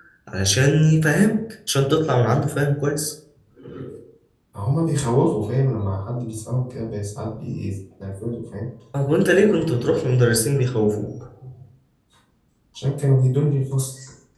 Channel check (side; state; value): both; identical; correlation 1.00